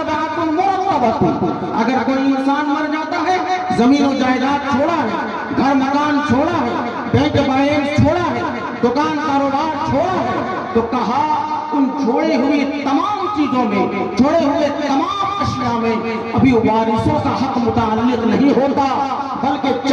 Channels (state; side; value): identical; both; correlation 1.00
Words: مرتبۃ۔ اگر کوئی انسان مر جاتا ہے، زمین و جائیداد چھوڑا ہے، گھر مکان چھوڑا ہے، بینک بیلنس چھوڑا ہے، دکان کاروبار چھوڑا ہے، تو کہا ان چھوڑے ہوئی تمام چیزوں میں، چھوڑے ہوئے تمام اشیاء میں ابھی وارثوں کا حق متعلق نہیں ہوتا، بلکہ